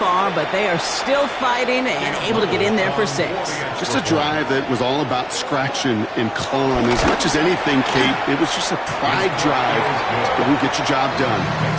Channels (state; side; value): identical; both; correlation 1.00